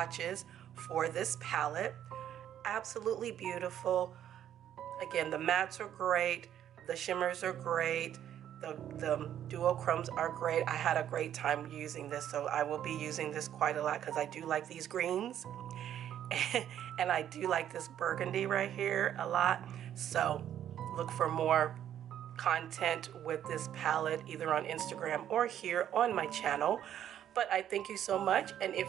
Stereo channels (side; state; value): left; quieter; 10.6 dB